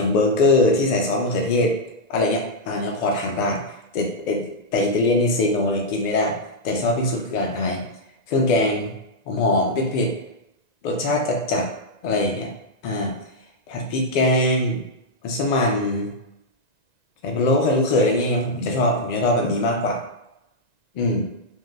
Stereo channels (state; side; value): late; right; 1.9 ms